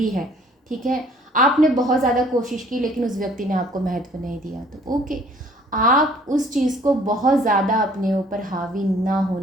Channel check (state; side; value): normal; both; correlation 0.57